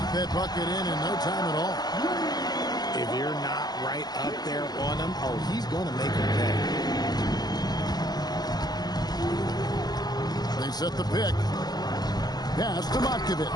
That bucket in no time at all. If you're not right up there on him, oh, he's going to make him pay. They set the pick. Pass to Matkovic.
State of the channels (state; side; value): late; right; 0.20 ms